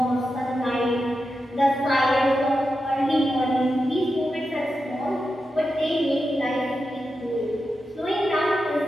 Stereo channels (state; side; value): normal; both; correlation 0.89